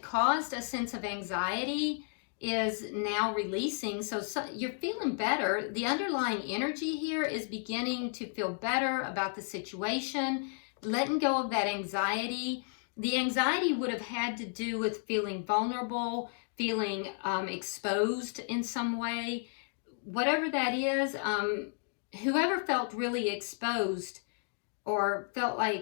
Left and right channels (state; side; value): silent; right; 56 dB below the other